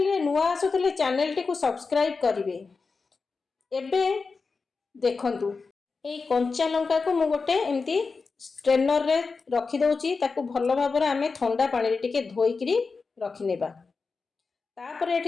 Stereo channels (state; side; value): quieter; right; 4.5 dB